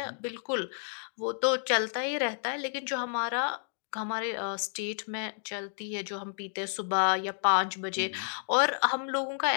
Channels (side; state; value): right; silent; digital silence